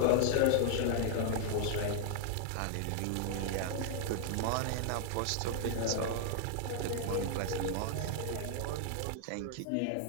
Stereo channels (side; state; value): both; different; correlation 0.00